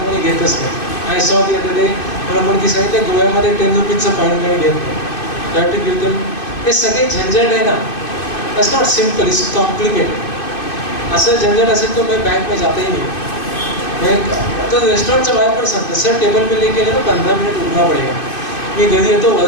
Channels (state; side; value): late; right; 2.6 ms